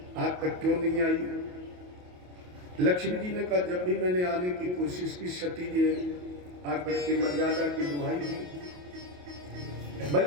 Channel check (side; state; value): left; late; 28 ms